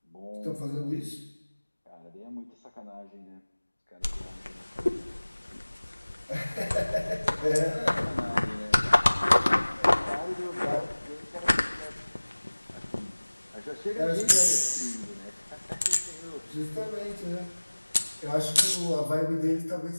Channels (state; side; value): inverted; both; correlation -1.00